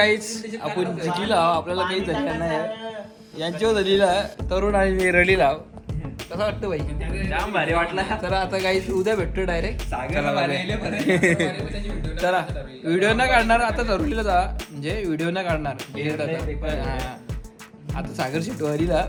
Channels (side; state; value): both; identical; correlation 1.00